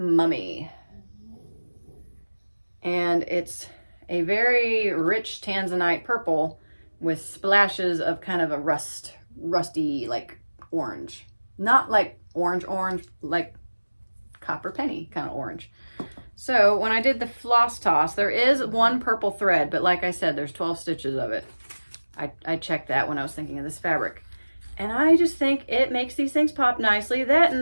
And it's a very rich tanzanite purple with splashes of kind of a rusty like orange. Not like orange, like copper penny kind of orange. So when I did the floss toss, there is one purple thread, but like I said, there's 12 stitches of it. I checked that when I was thinking of this fabric. And I just think it makes these things pop nicely. That,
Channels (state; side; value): inverted; both; correlation -1.00